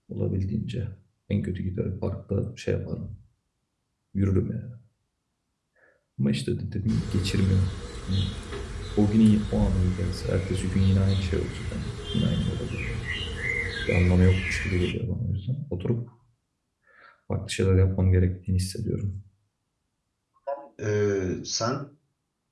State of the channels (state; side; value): identical; both; correlation 1.00